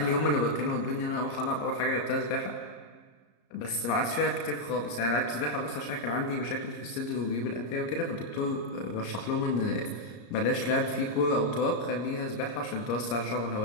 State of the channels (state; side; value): late; right; 34 ms